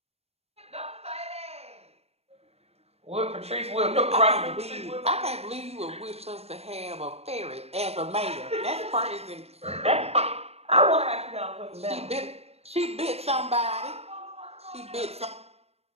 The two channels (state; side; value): late; left; 0.30 ms